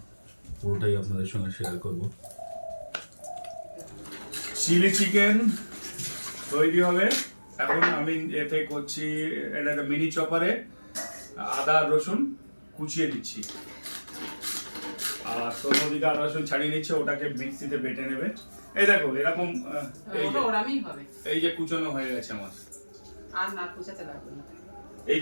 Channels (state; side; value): inverted; both; correlation -1.00